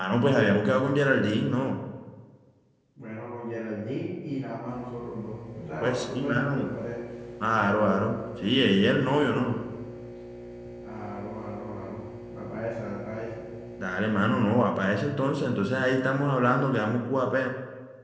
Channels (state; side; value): identical; both; correlation 1.00